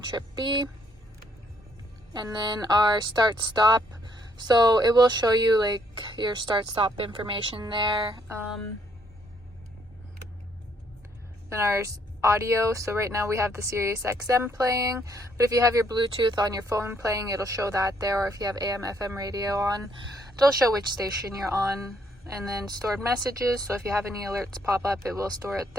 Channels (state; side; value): normal; both; correlation 0.69